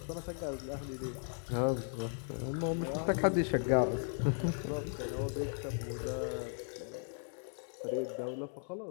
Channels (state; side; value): silent; right; 53 dB below the other